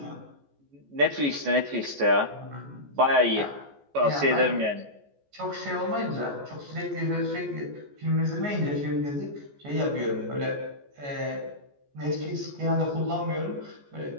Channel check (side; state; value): left; late; 14 ms